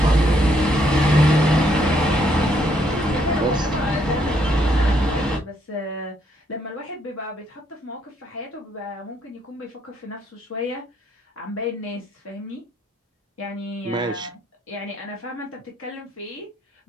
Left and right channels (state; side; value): normal; both; correlation 0.72